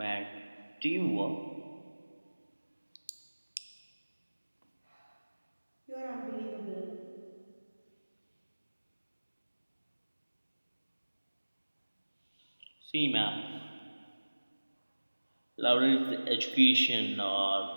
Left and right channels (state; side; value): inverted; both; correlation -1.00